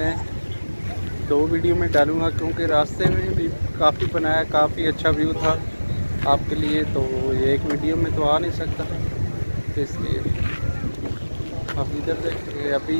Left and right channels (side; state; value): both; inverted; correlation -1.00